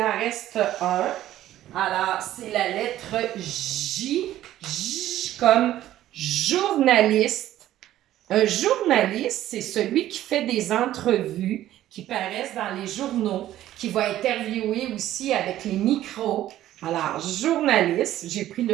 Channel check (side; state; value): left; quieter; 13.3 dB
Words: en reste un. Alors, c'est la lettre J. J comme journaliste. Un journaliste, c'est celui qui fait des entrevues qui paraissent dans les journaux, qui va interviewer aussi avec les micros. Alors, journaliste, j'ai pris